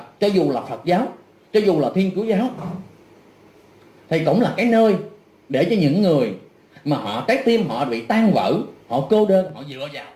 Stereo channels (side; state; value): both; identical; correlation 1.00